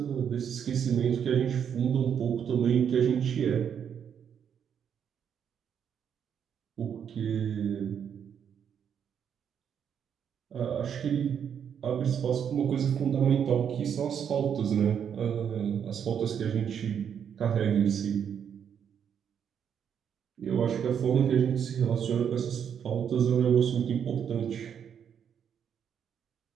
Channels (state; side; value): quieter; left; 8.1 dB